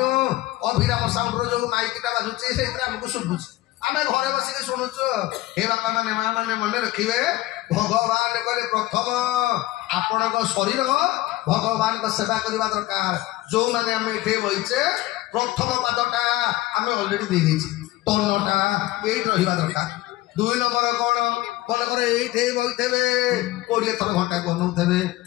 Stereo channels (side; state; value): right; quieter; 17.2 dB